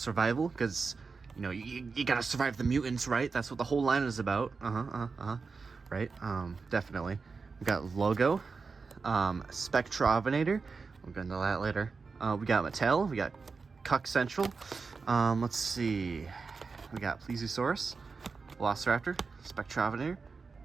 because you know you gotta survive the mutants, right? That's what the whole line is about. Right? Definitely. We got logo, Spectrovenator. We'll get into that later. We got Mattel. We got Cuck Central. Let's see. We got Plesiosaurus, Velociraptor, Spectrovenator,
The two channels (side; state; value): left; quieter; 4.7 dB